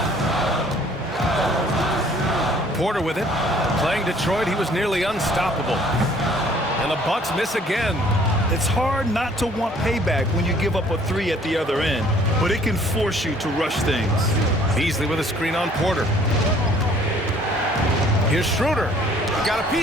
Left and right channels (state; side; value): normal; both; correlation 0.57